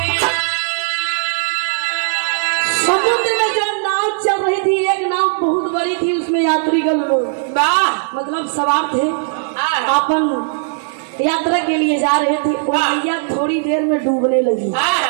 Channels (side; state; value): left; silent; digital silence